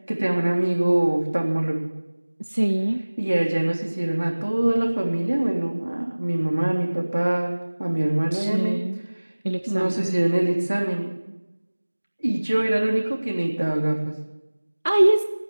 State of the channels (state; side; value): inverted; both; correlation -1.00